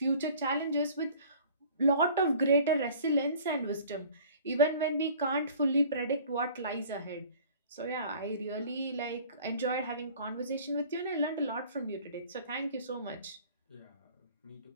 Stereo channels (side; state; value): both; inverted; correlation -0.48